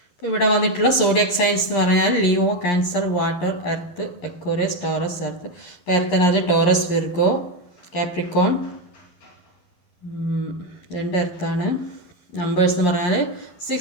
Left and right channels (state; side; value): late; right; 11 ms